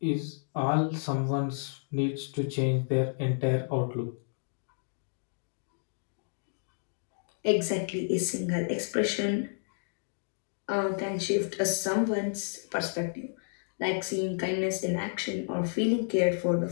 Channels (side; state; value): right; silent; digital silence